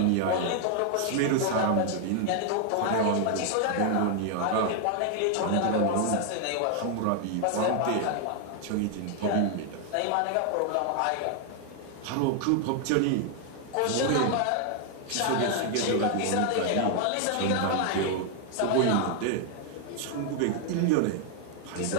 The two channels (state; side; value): different; both; correlation 0.00